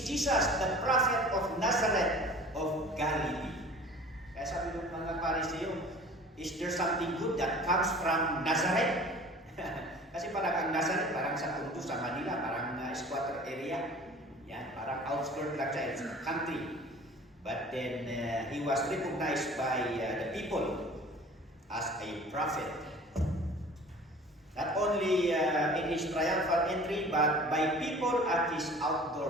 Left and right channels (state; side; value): normal; both; correlation 0.45